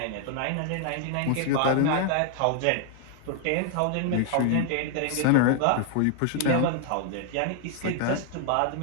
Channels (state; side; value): different; both; correlation 0.00